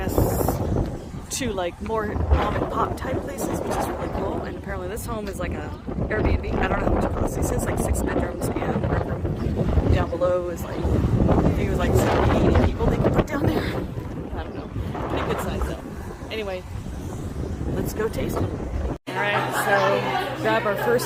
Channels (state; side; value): identical; both; correlation 1.00